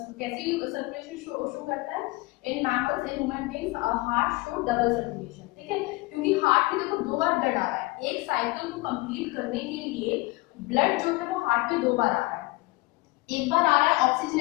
कैसी सर्कुलेशन शो करता है, in mammals, in human beings heart show double circulation. ठीक है, क्योंकि हार्ट में देखो 2 बार ब्लड आ रहा है, एक साइकिल को कंप्लीट करने के लिए ब्लड जो है वो हार्ट में 2 बार आ रहा है। एक बार आ रहा है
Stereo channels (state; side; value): quieter; right; 22.6 dB